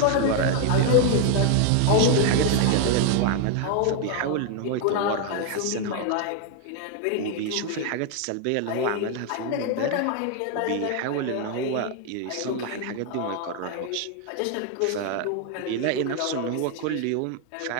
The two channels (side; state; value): both; different; correlation 0.00